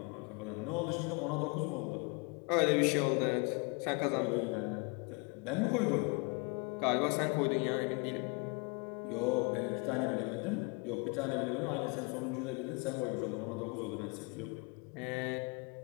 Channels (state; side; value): quieter; right; 31.8 dB